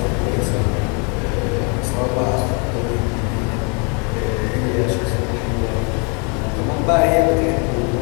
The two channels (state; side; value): quieter; right; 34.9 dB